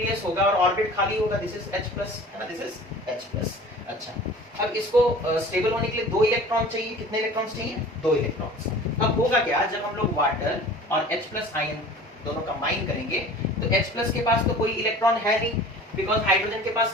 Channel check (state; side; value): normal; both; correlation 0.43